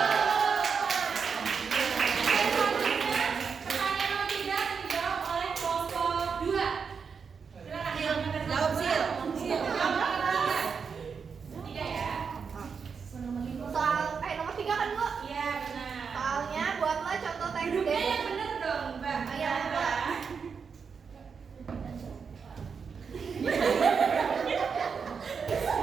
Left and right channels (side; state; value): left; quieter; 5.9 dB